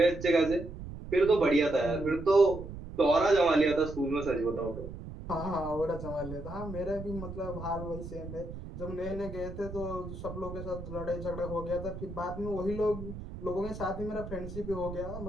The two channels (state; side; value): noise; right; rumble, 10 dB below the sound